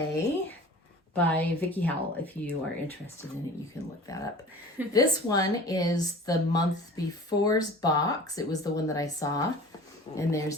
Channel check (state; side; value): normal; both; correlation 0.42